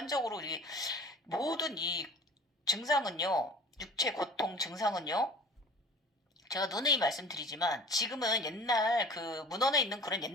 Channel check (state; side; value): normal; both; correlation 0.43